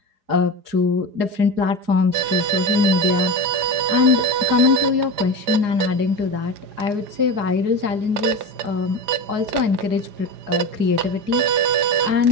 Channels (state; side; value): late; left; 5.0 ms